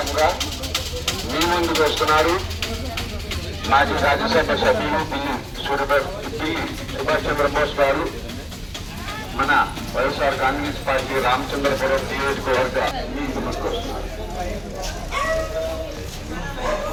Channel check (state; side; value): identical; both; correlation 1.00